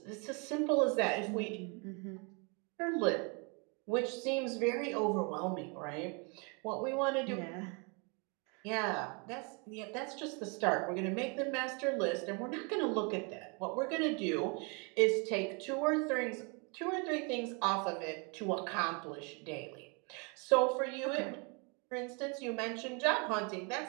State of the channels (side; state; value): left; quieter; 33.3 dB